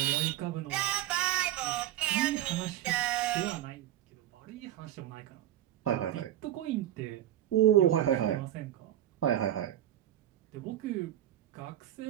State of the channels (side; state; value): left; quieter; 12.5 dB